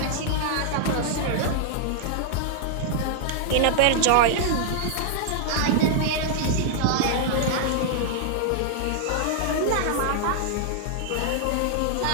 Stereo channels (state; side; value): different; both; correlation -0.01